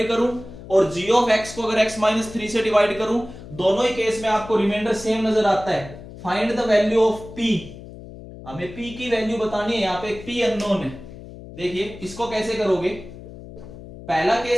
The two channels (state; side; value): noise; left; hum, 15 dB below the sound